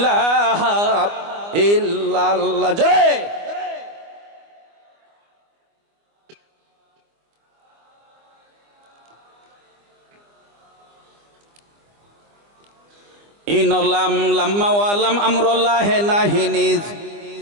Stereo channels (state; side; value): late; left; 25 ms